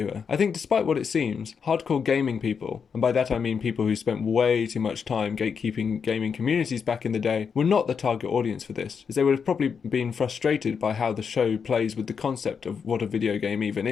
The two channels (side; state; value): right; quieter; 6.3 dB